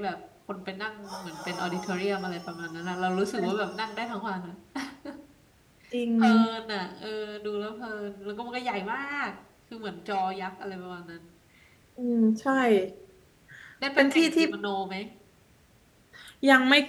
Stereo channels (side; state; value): both; identical; correlation 1.00